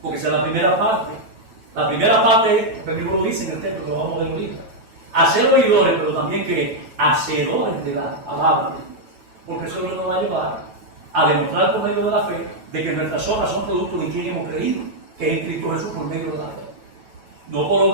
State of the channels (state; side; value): late; left; 9.1 ms